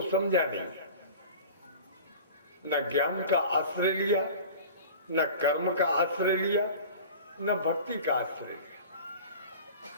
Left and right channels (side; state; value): both; inverted; correlation -0.39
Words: समझा नहीं, न ज्ञान का आश्रय लिया, न कर्म का आश्रय लिया, न भक्ति का आश्रय लिया।